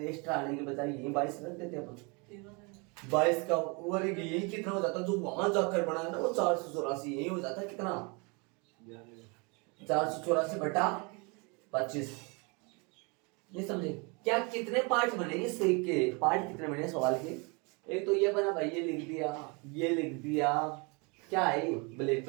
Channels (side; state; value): left; quieter; 30.7 dB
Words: एक्स्ट्रा आने के बजाय यही 22 रख देते अपन। 22 का वर्ग यही कितना हो जाता, जो वहां जाकर बना है ना वो 484 यही हो जाता है कितना 484 बटा 25। नहीं समझे क्या? कितने पार्ट बने इस के पार्ट कितने बने सवाल के? एक तो ये बना भाई, ये लिख दिया क्या है ये